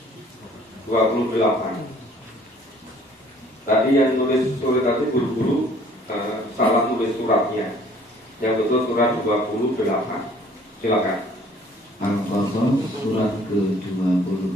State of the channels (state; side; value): normal; both; correlation 0.56